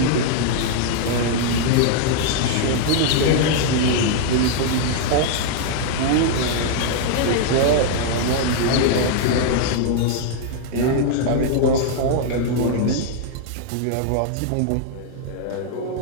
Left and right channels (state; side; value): different; both; correlation 0.00